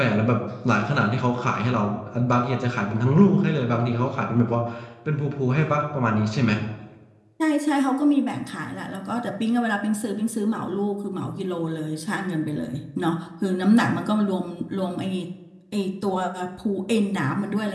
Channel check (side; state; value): both; identical; correlation 1.00